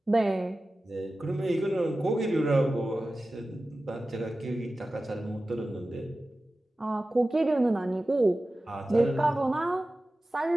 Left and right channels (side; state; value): both; normal; correlation 0.95